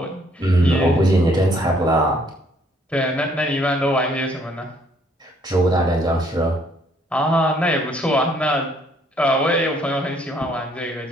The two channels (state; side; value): normal; both; correlation 0.65